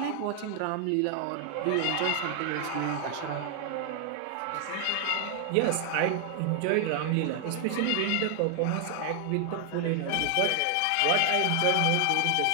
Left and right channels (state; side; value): different; both; correlation 0.00